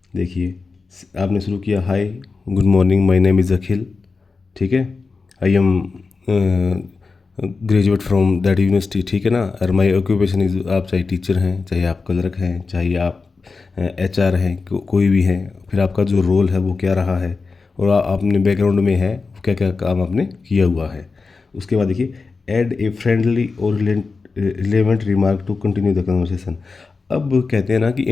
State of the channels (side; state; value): right; quieter; 4.3 dB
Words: देखिए, आपने शुरू किया, hi, good morning, my name is Akhil, ठीक है, I am graduate from that university, ठीक है ना। और माय ऑक्यूपेशन इज़, आप चाहे टीचर हैं, चाहे आप क्लर्क हैं, चाहे आप एचआर हैं, कोई भी हैं, फिर आपका जो रोल है वो क्या रहा है, और आपने बैकग्राउंड में है क्या क्या काम आपने किया हुआ है। उसके बाद देखिए, ऐड ए फ्रेंडली और relevant remark to continue the conversation. अब कहते हैं ना कि